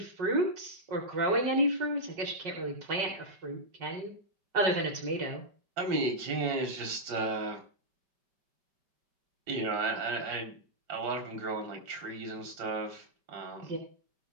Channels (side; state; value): left; late; 5.2 ms